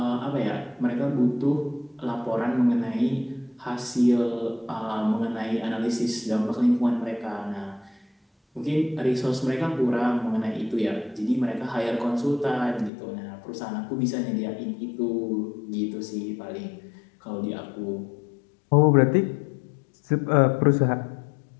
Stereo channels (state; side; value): drops out; right; at 12.9 s